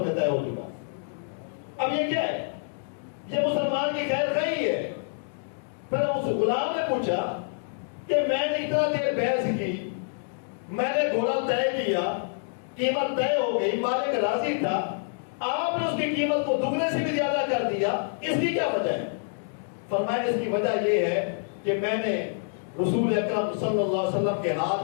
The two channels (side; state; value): right; silent; digital silence